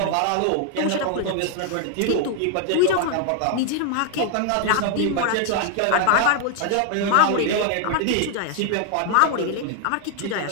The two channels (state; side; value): different; both; correlation 0.00